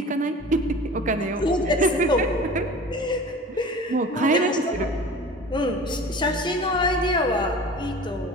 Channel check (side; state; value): both; normal; correlation 0.39